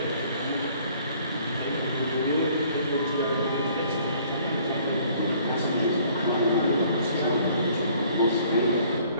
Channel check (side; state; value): both; inverted; correlation -0.58